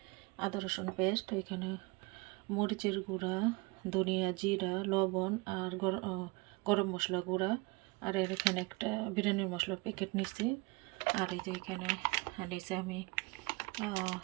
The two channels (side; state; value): left; quieter; 26.2 dB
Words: আদা রসুন পেস্ট, এখানে মরিচের গুঁড়া, ধনিয়া, জিরা, লবণ আর গরম মশলা গুঁড়া, আর এখানে একটা বিরিয়ানির মশলার প্যাকেট নিছি। আর এই যে এখানে নিছি আমি